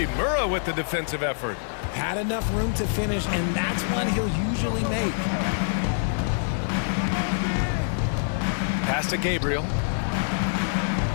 with the defensive effort. Had enough room to finish, and that's one he'll usually make. Pass to Gabriel.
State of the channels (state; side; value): silent; right; 61 dB below the other